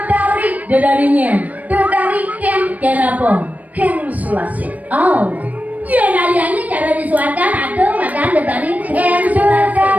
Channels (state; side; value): late; left; 0.073 ms